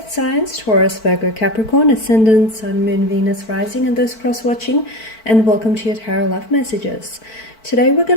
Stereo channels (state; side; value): late; right; 4.5 ms